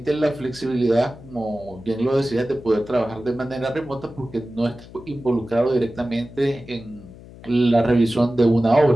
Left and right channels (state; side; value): noise; left; hum, 19 dB below the sound